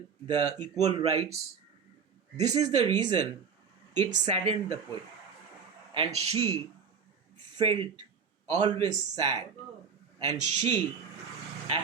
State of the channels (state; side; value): quieter; left; 6.3 dB